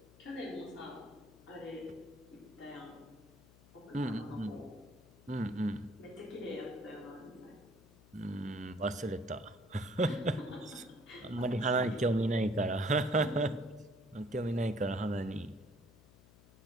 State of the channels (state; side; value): noise; left; hum, 24 dB below the sound